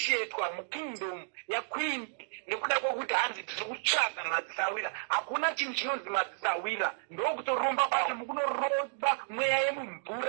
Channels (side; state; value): left; silent; digital silence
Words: mukingdom yaqueen nekuda kwokuti hanzi tiri kutsvaga madzisawira. Hakuna chinhu chinonzi madzisawira ndokutoromba basi mukunoromba mweya